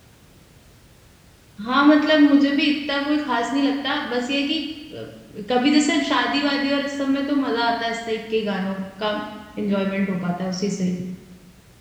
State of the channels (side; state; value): both; identical; correlation 1.00